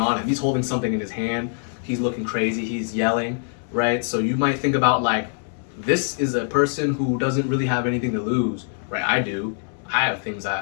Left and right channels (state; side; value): silent; right; digital silence